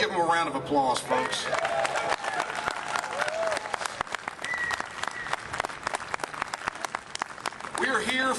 them a round of applause, folks. We are here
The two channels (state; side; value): identical; both; correlation 1.00